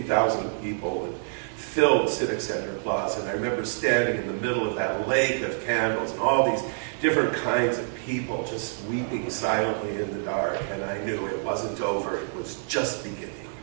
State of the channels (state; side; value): silent; left; digital silence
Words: people, and filled Civic Center Plaza. And I remember standing in the middle of that lake of candles, and all these different kinds of people just weeping silently in the dark, and I knew it wasn't over, it was just beginning.